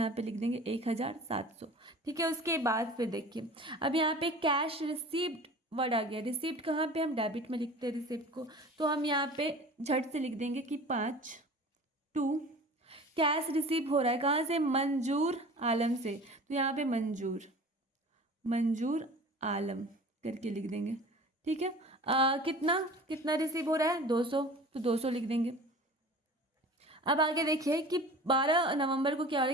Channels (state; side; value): normal; both; correlation 0.40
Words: पे लिख देंगे 1700। ठीक है, उसके बाद फिर देखिए अब यहाँ पे कैश रिसीव्ड वर्ड आ गया। रिसीव्ड कहाँ पे, हम डेबिट में लिखते हैं रिसीव्ड को, तो हम यहाँ पे झट से लिख देंगे कि 5/2 कैश रिसीव हो रहा है कहाँ से, मंजूर आलम से। तो यहाँ पे मंजूर आलम करके लिख देंगे। ठीक है, कितना कितना रिसीव हो रहा है, 200, तो 200 लिख देंगे। अब आगे देखिए कि 12 नवंबर को क्या हो रहा